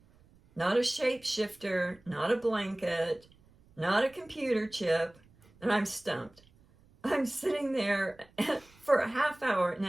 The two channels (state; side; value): noise; right; rumble, 29 dB below the sound